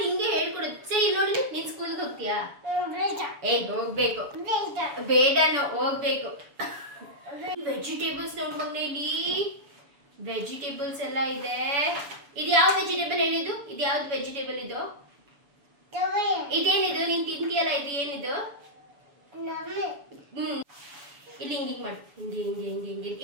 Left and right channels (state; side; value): late; left; 7.0 ms